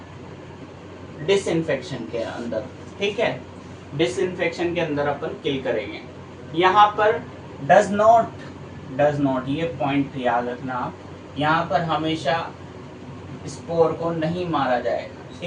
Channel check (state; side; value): identical; both; correlation 1.00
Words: डिसइंफेक्शन के अंदर। ठीक है, डिसइंफेक्शन के अंदर अपन किल करेंगे। यहाँ पर डज नॉट, ये पॉइंट याद रखना आप, यहाँ पर हमेशा स्पोर को नहीं मारा जाएगा।